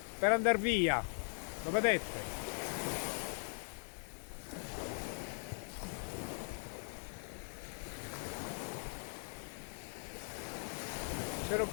per andare via, lo vedete? Ce lo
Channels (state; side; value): silent; right; digital silence